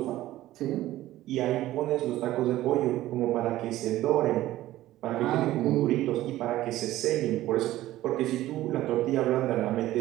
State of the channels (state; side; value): quieter; left; 15.2 dB